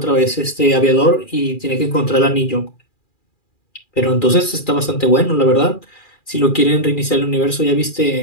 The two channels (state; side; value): late; right; 2.4 ms